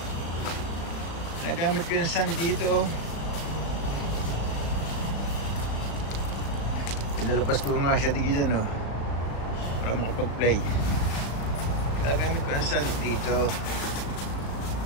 Nagamit ko yung sand dito. Pinalapas ko nga siya digisan, no, para makapag-play. Nagamit ko ang sand dito.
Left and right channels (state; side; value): late; right; 36 ms